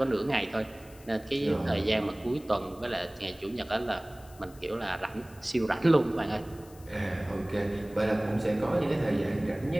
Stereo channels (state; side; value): noise; left; hiss, 24 dB below the sound